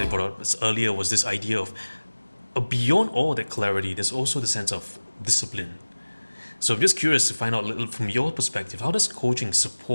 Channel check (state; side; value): inverted; both; correlation -1.00